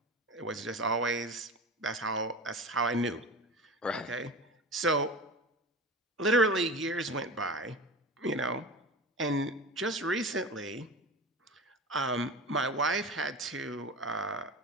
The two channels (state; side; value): normal; both; correlation 0.30